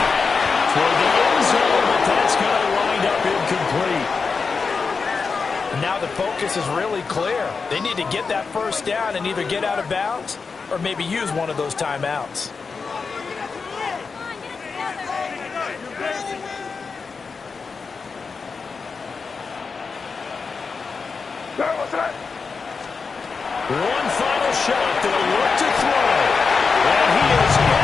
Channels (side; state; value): right; quieter; 4.9 dB